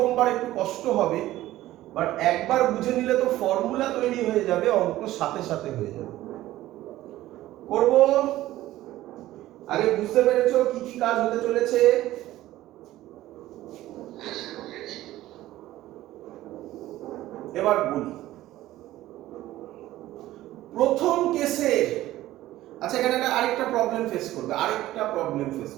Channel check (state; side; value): quieter; left; 15.3 dB